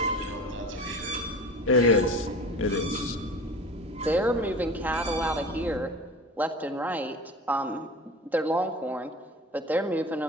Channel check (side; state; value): both; normal; correlation 0.37